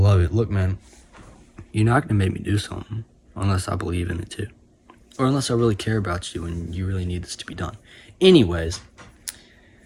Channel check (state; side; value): identical; both; correlation 1.00